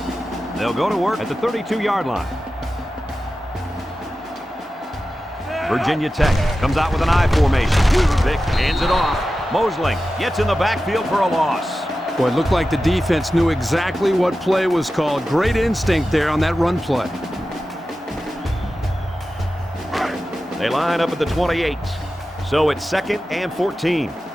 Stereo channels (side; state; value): both; normal; correlation 0.93